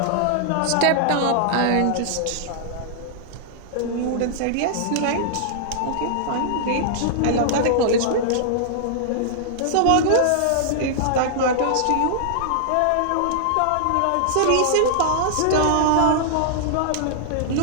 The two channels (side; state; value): both; different; correlation -0.01